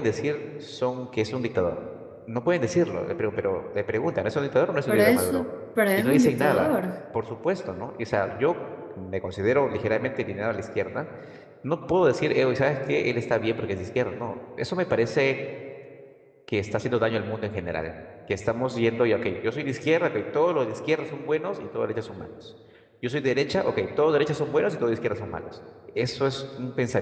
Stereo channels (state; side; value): identical; both; correlation 1.00